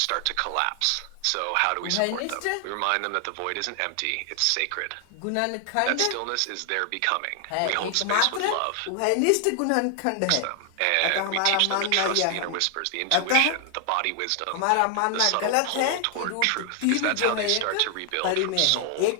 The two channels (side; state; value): both; different; correlation 0.00